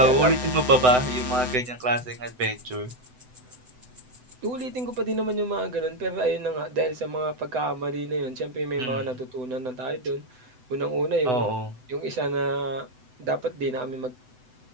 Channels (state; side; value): late; left; 7.9 ms